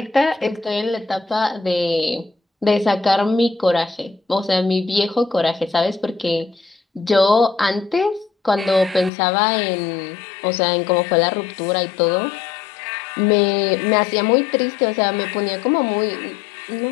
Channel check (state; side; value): drops out; right; at 9.1 s